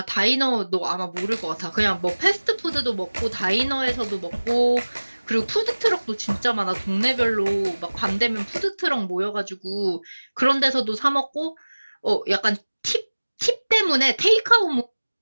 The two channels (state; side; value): inverted; both; correlation -1.00